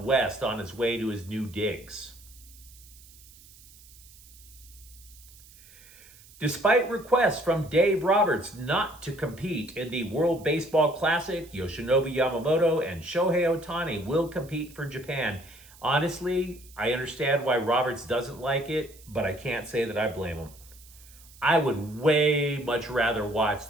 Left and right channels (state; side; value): noise; right; hiss, 23 dB below the sound